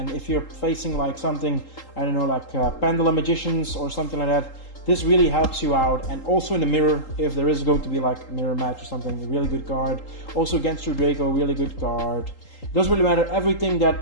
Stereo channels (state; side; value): late; right; 3.8 ms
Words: if you're facing like something, I don't know, like Pendulum Magicians or something like that, this really helps you out. And also in the mirror, if there is going to be like a mirror match or something, a really good card. Also against your Draco, really good card. It doesn't really matter, everything